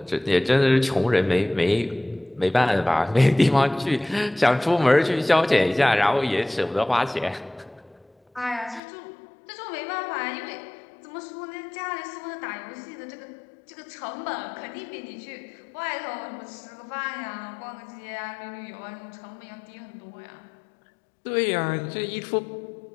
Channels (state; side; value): drops out; right; at 8.8 s